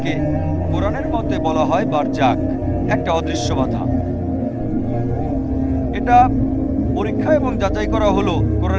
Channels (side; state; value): both; identical; correlation 1.00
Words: কোরআনের মতে বলা হয় বারজাক, একটা অদৃশ্য বাধা। এটা পরীক্ষা এবং যাচাই করা হলো